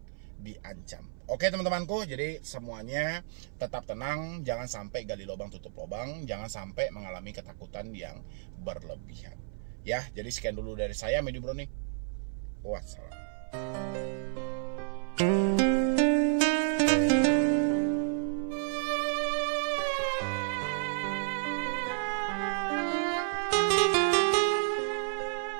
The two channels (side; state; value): left; silent; 57 dB below the other